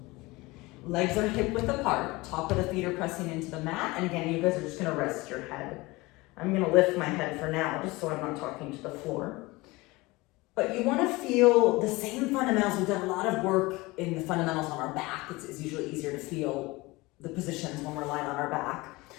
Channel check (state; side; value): quieter; right; 22.2 dB